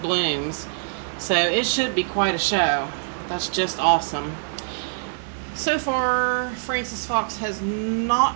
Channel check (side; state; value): left; silent; 63 dB below the other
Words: blooms. So it should be quite a show. That's just awesome. So far, Frances Fox has